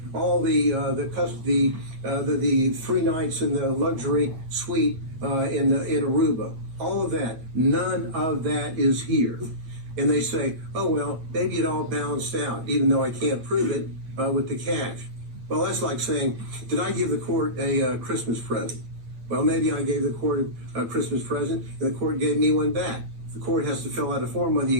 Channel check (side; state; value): left; late; 8.8 ms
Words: all the 3 nights in the luxury suite in Aruba. All of that. None of that is here. And they say, oh, well, maybe it all balanced out, even though I can't prove it with the cash. Well, that's like saying, did I give the court a Christmas present? Well, maybe I gave the court a Christmas present, and the court gave me one back. The court has to fill out a form whether